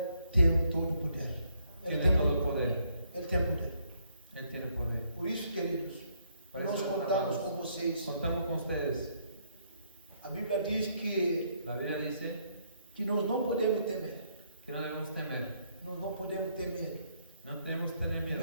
tem todo o poder. Ele tiene tem todo el poder. Ele tem poder. Él tiene poder. Por isso, queridos, Por nós eso, contamos hermanos, com vocês. Contamos con ustedes. A Bíblia diz que La Biblia dice nós não podemos temer. que no debemos temer. Nós não podemos temer, No tenemos que tener miedo.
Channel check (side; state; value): both; inverted; correlation -0.71